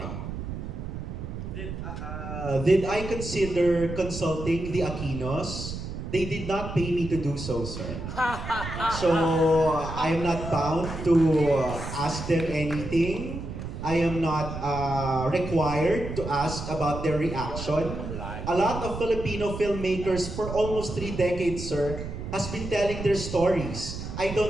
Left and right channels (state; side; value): noise; right; rumble, 7 dB below the sound